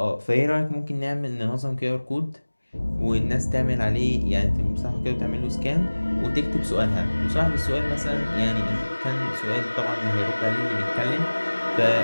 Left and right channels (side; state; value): both; inverted; correlation -1.00